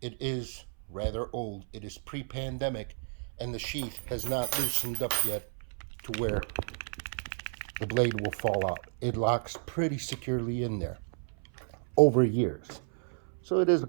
It is rather old. It is pre-pandemic, and the sheath has not loosened up yet to where the blade will fall out. It locks pretty securely in there over years. So it is a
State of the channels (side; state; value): left; silent; 56 dB below the other